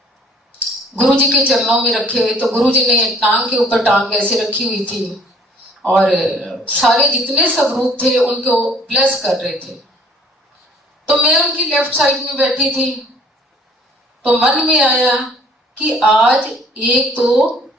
गुरुजी के चरणों में रखे। तो गुरुजी ने टांग के ऊपर टांग ऐसे रखी हुई थी और सारे जितने स्वरूप थे उनको ब्लेस कर रहे थे। तो मैं उनकी लेफ्ट साइड में बैठी थी, तो मन में आया कि आज एक तो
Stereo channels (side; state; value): both; normal; correlation 0.57